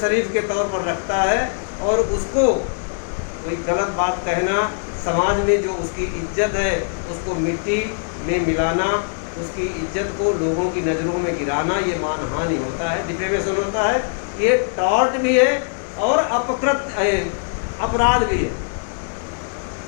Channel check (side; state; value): right; silent; digital silence